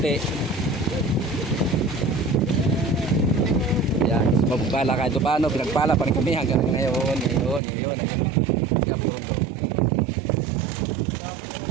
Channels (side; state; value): left; drops out; at 7.6 s